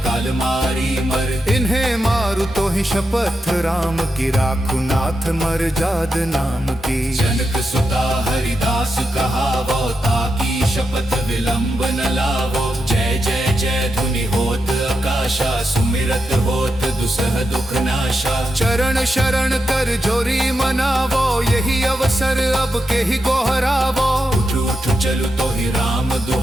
काल मारी मर। इन्हें मारु तो ही शपथ राम की, राखु नाथ मर जाद नाम की। जनक सुता हरिदास कहावो, ताकी शपथ विलंब न लावो। जय जय जय धुनि होत आकाशा, सुमिरत होत दुसह दुख नाशा। चरण शरण कर जोरी मनावो, यही अवसर अब के ही गोहरावो। उठ उठ चलु तो ही राम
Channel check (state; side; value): normal; both; correlation 0.86